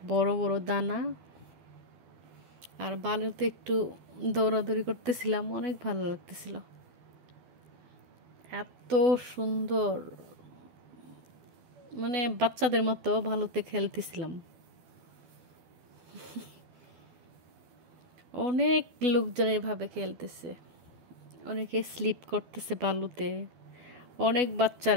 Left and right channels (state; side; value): late; left; 12 ms